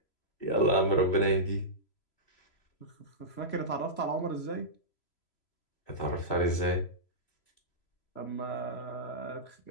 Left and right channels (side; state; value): right; late; 3.0 ms